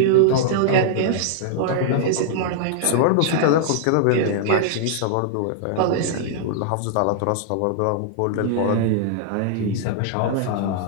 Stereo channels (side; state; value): both; different; correlation -0.01